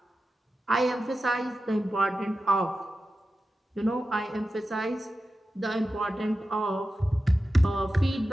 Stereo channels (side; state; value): both; normal; correlation 0.92